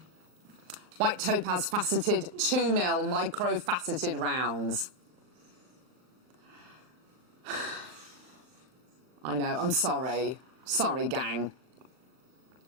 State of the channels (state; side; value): late; left; 38 ms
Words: White topaz faceted 2mm micro faceted rounds. I know, I'm sorry. Sorry, gang.